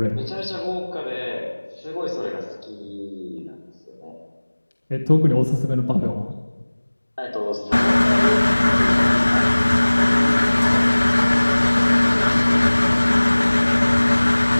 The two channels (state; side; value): inverted; both; correlation -1.00